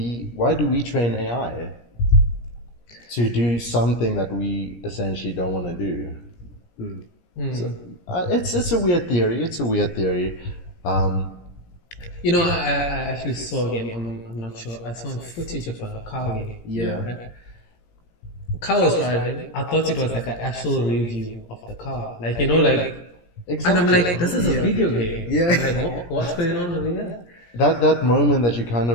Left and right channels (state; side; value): late; right; 17 ms